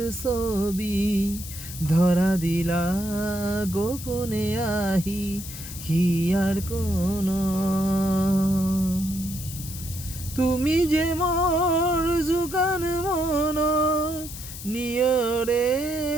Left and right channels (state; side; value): noise; left; hiss, 11 dB below the sound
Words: ছবি, ধরা দিলা গোপনে আহি হিয়ার কোন। তুমি যে মোর জুকান মন নিয়রে